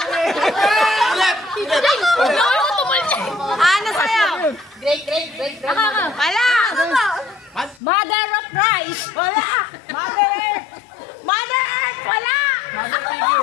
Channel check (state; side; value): drops out; right; at 7.8 s